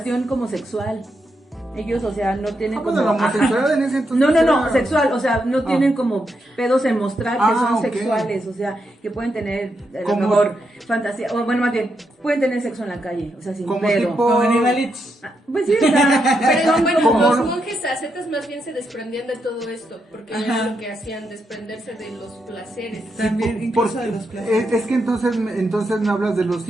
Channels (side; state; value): both; normal; correlation 0.82